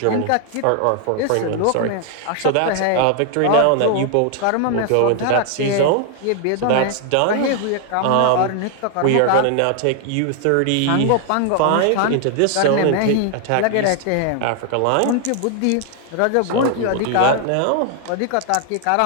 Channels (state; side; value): different; both; correlation 0.00